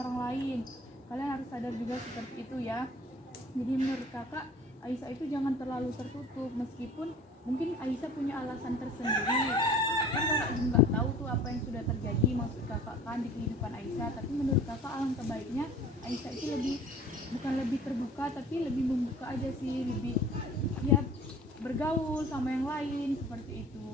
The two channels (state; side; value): normal; both; correlation 0.46